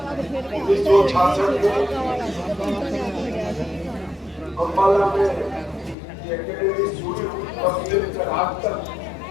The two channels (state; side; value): drops out; right; at 6.0 s